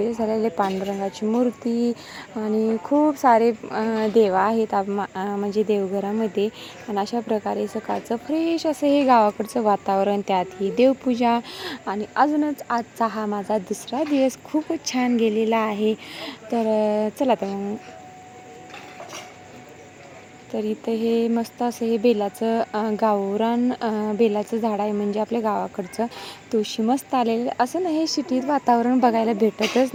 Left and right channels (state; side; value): identical; both; correlation 1.00